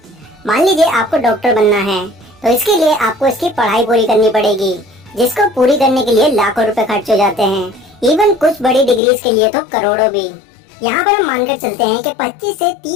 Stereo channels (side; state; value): right; drops out; at 9.0 s